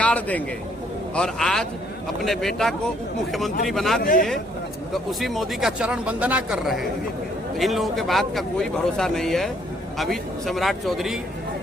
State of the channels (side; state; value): both; normal; correlation 0.66